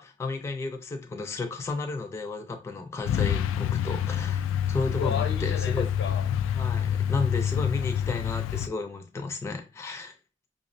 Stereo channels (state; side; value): quieter; right; 6.7 dB